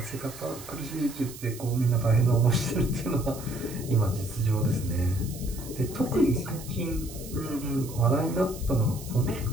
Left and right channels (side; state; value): right; noise; hiss, 15 dB below the sound